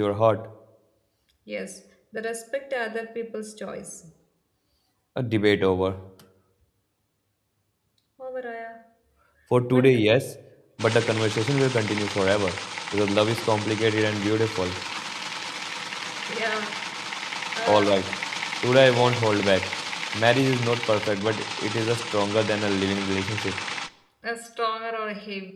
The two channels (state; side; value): identical; both; correlation 1.00